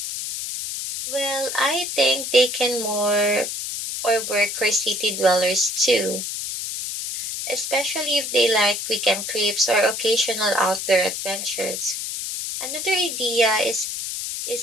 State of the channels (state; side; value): noise; left; hiss, 5 dB below the sound